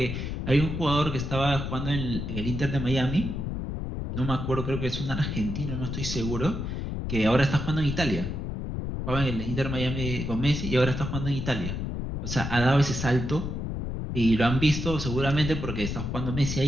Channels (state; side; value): noise; left; rumble, 4 dB below the sound